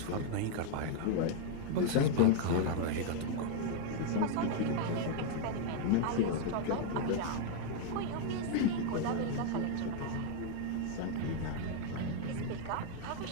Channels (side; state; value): both; different; correlation 0.00